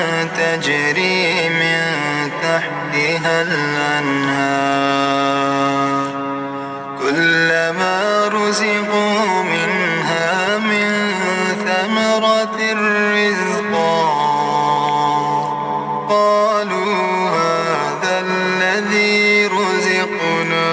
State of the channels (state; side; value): identical; both; correlation 1.00